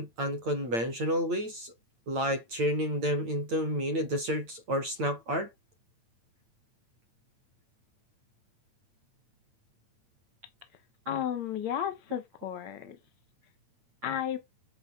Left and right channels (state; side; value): late; left; 8.8 ms